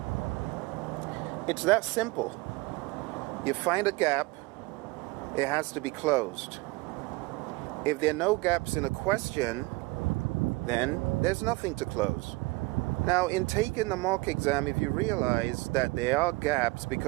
It's that simple. You find a gap, it has to be closed. If there are no gaps in a question, then there's nothing to close. Now, in taking the mock exam, if you realize that there are gaps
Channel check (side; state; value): left; quieter; 23.6 dB